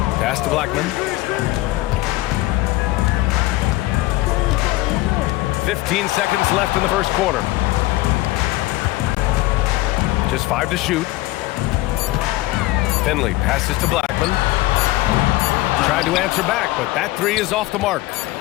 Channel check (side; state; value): right; quieter; 18.6 dB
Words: Pass to Blackman. 15 seconds left in the first quarter. Just 5 to shoot. Finley passes to Blackman. Tried to answer back, but that 3 is off the mark.